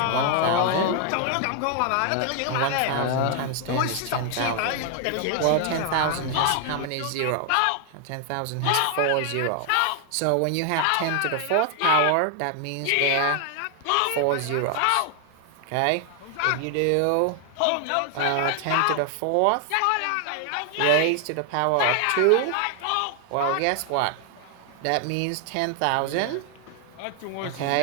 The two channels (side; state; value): both; different; correlation 0.00